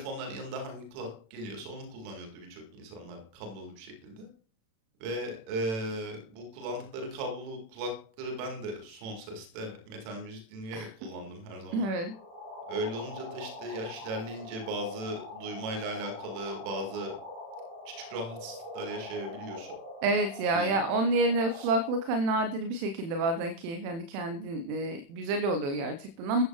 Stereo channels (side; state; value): left; late; 36 ms